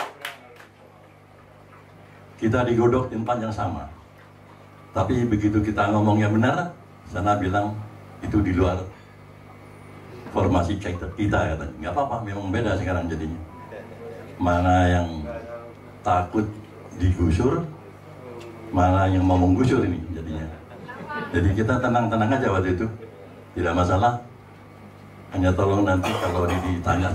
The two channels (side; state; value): both; identical; correlation 1.00